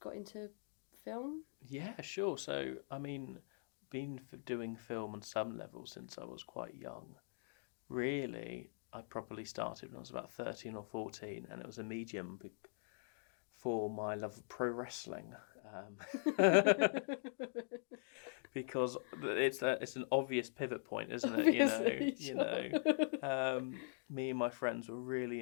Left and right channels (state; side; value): silent; right; digital silence